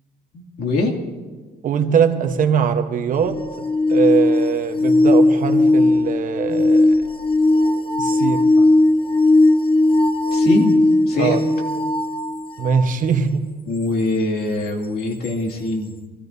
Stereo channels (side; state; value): both; normal; correlation 0.80